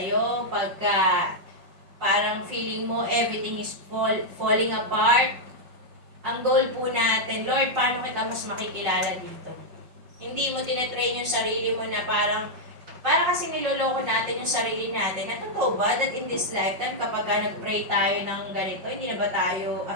pagka parang feeling mo everything is falling apart, ang goal po natin, Lord, paano kita mas makikilala dito? Hindi mo tinetrain yung sarili mo na para kasi niloloko natin yung sarili natin. Na totoo ba that in this lifetime, kapag nag-pray tayo ng ganito, hindi na ba tayo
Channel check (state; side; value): late; left; 5.4 ms